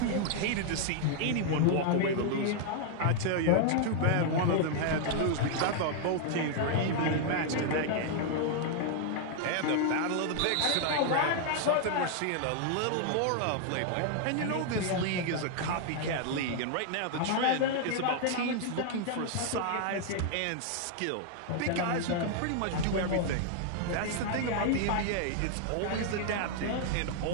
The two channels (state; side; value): different; both; correlation 0.00